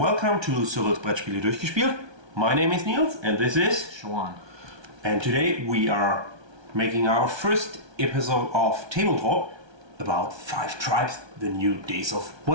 to Cyrils Brettspiele durchgespielt. My name is Nils and this is Showan. And today we are making our first episode of Tabletop about 5 Tribes, the new Days of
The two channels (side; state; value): left; late; 1.2 ms